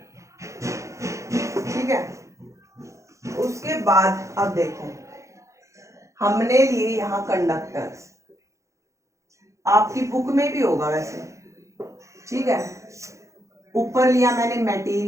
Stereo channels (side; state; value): left; late; 0.15 ms